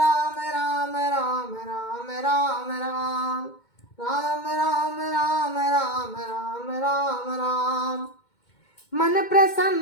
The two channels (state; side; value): late; right; 2.2 ms